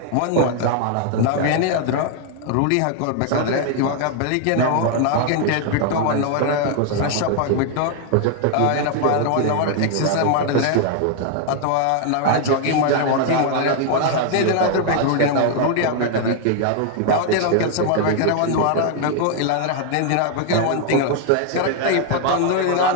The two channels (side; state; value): both; different; correlation 0.00